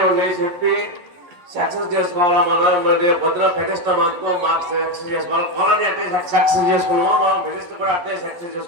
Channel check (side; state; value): left; late; 11 ms